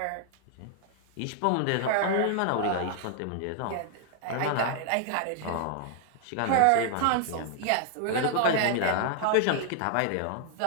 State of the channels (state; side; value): different; both; correlation 0.00